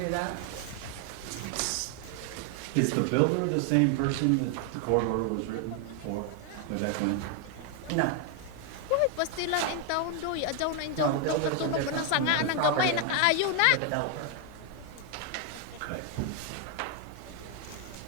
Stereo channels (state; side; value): different; both; correlation 0.01